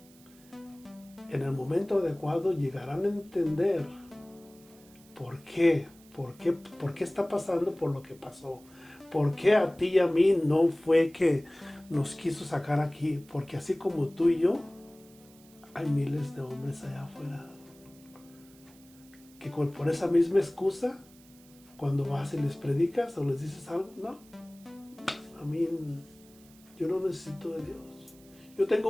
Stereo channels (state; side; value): noise; right; hiss, 26 dB below the sound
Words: en el momento adecuado llegarán a entender por qué está pasando por lo que pasó. Por qué a ti y a mí no fue que nos quiso sacar aquí. Porque así como tú y yo, hay miles de hombres allá afuera que por esa misma excusa, cuando vas y les predicas o les dices algo, no, a mí yo no necesito de Dios. Yo tengo